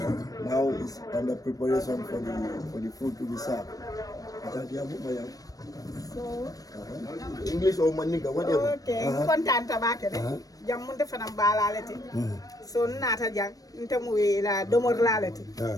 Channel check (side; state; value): right; late; 0.18 ms